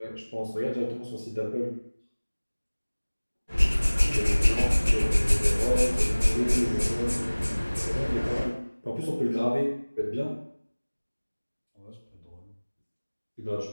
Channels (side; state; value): both; inverted; correlation -1.00